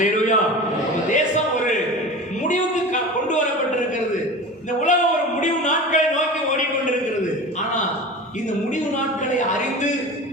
தேசம் ஒரு முடிவுக்கு கொண்டு வரப்பட்டிருக்கிறது. இந்த உலகம் ஒரு முடிவு நாட்களை நோக்கி ஓடிக்கொண்டிருக்கிறது. ஆனா இந்த முடிவு நாட்களை அறிந்து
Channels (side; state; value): both; normal; correlation 0.33